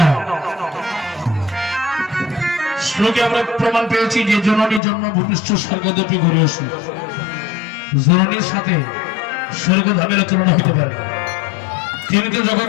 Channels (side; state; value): right; drops out; at 4.8 s